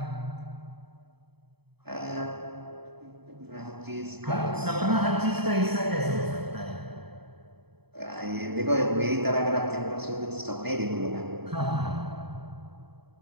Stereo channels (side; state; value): left; late; 0.98 ms